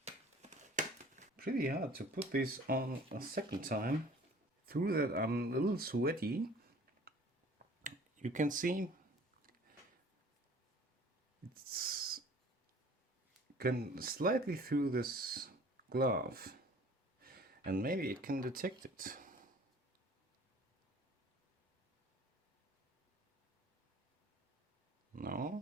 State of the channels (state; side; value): normal; both; correlation 0.50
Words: Pretty hard to put this on a second time. Through that I'm a little sweaty. You can see it's can slightly through this glove. And maybe it can detect it.